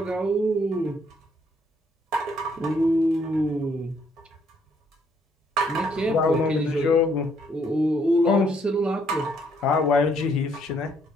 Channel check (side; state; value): both; normal; correlation 0.69